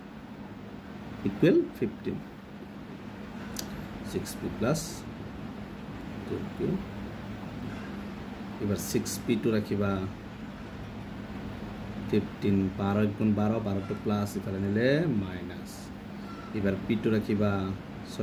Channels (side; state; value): both; identical; correlation 1.00